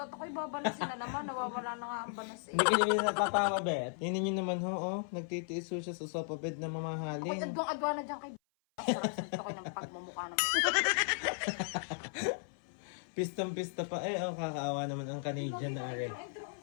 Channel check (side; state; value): right; silent; 54 dB below the other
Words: ako'y babalasin na naman. Nawawala na nga ang balas eh. Hindi ka naman natatawa, bet. Tingnan nyo naman ho, nagtitiis ho siya sa sofa bed na Ako'y mamahalin. adwang-adwa na dyan kay sarap ko ng pagmamukha ng Pistang-pista pa kakaawa naman ang Canadian na arin. Ay, drone